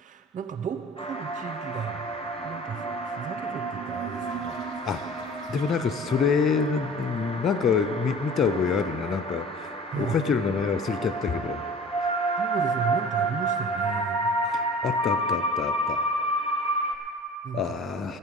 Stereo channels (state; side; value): normal; both; correlation 0.43